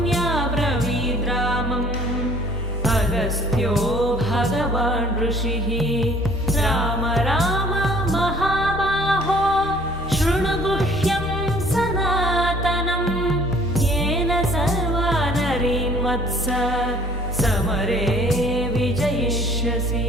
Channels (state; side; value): normal; both; correlation 0.55